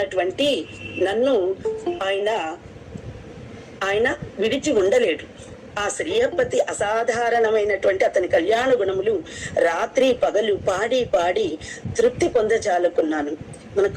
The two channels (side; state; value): both; identical; correlation 1.00